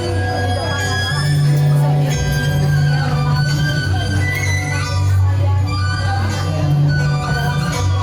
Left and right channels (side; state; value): both; identical; correlation 1.00